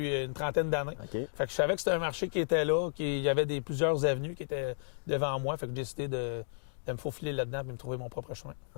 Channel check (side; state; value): right; silent; digital silence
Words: une trentaine d'années. OK. Fait que je savais que c'était un marché qui était là, qu'il y avait plusieurs avenues qui étaient devant moi. Fait que j'ai décidé de me faufiler là-dedans et me trouver mon propre chemin.